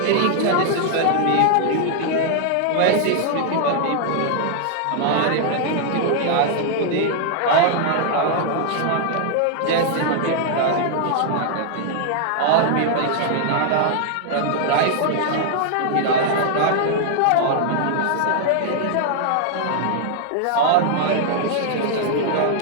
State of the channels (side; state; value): both; different; correlation -0.01